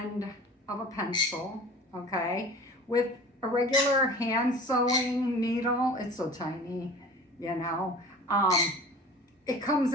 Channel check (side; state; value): both; normal; correlation 0.41